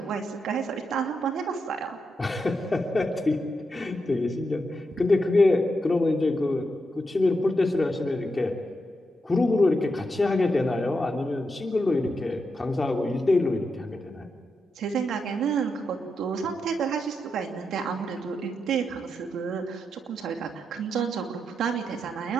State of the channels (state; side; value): normal; both; correlation 0.85